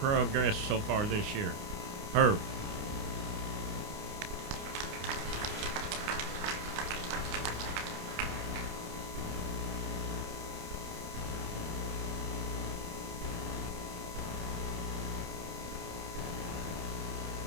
so far this year. Herb.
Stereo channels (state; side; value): late; left; 29 ms